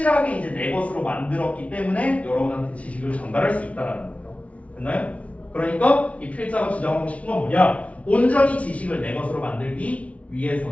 이제 내 것으로 만들었기 때문에 여러분한테 지식을 전달할 수 있다라는 거죠. 됐나요? 그러니까 이 필자가 주장하고 싶은 건 뭐냐? 온전히 지식을 내 것으로 만들기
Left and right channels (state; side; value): late; right; 0.065 ms